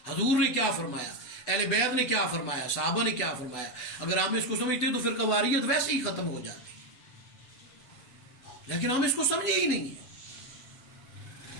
حضور نے کیا فرمایا، اہل بیت نے کیا فرمایا، صحابہ نے کیا فرمایا؟ اگر ہم اس کو سمجھتے تو پھر قواریت ویسے ہی ختم ہو جاتی، لیکن ہم اس کو سمجھے ہی نہیں ہیں۔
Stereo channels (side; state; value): right; late; 8.0 ms